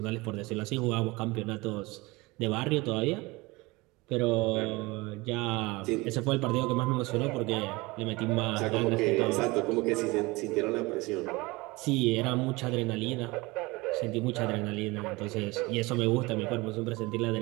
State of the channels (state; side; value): quieter; left; 23.2 dB